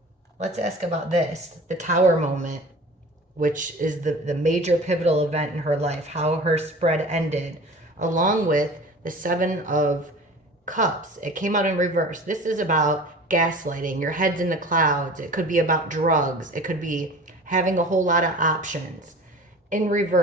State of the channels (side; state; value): both; normal; correlation 0.40